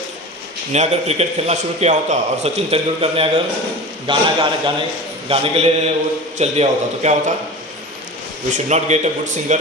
ने अगर क्रिकेट खेलना शुरू किया होता और सचिन तेंदुलकर ने अगर गाने के लिए वो चल दिया होता, तो क्या होता? We should not get a good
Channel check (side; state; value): both; normal; correlation 0.33